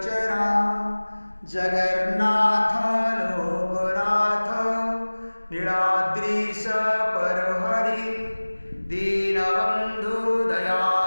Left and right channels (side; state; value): both; inverted; correlation -1.00